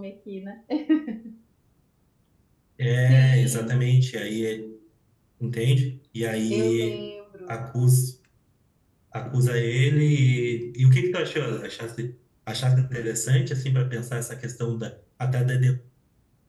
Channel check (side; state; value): both; identical; correlation 1.00